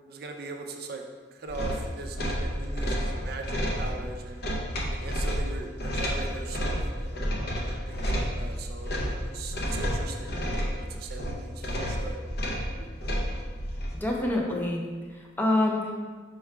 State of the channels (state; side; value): normal; both; correlation 0.73